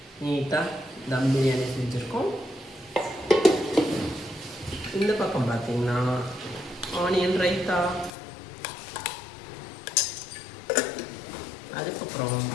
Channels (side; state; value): right; drops out; at 8.1 s